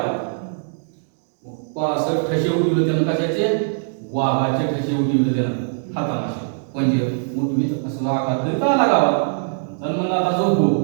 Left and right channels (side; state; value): left; silent; digital silence